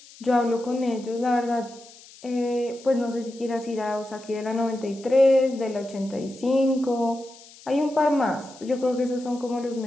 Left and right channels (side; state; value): left; noise; hiss, 22 dB below the sound